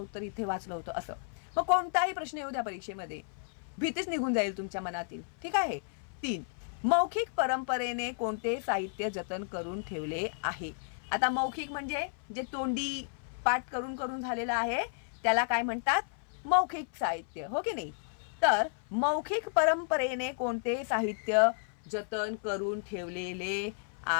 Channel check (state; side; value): silent; right; 56 dB below the other